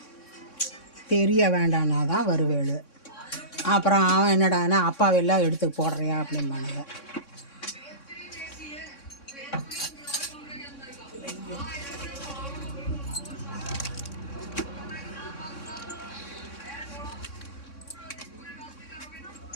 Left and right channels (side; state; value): right; late; 3.6 ms